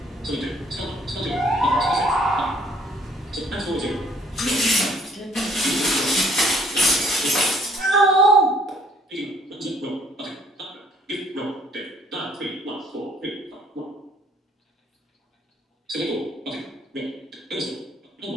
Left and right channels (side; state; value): both; normal; correlation 0.60